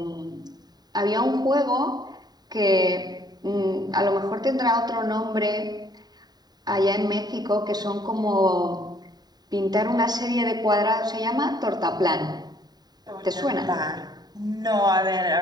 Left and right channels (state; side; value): late; left; 0.20 ms